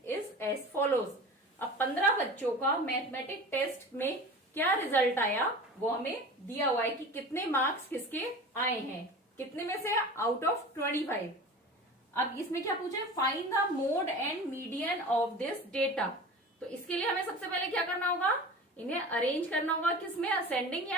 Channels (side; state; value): both; normal; correlation 0.36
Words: is as follows. अब 15 बच्चों का mathematic test में क्या result आया वो हमें दिया हुआ है कि कितने मार्क्स किसके आए हैं, कितने में से आउट ऑफ 25। अब इसमें क्या पूछे, find the mode and median of this data. तो इसके लिए हमें सबसे पहले क्या करना होगा, इन्हें अरेंज करना होगा किसमें, असेंडिंग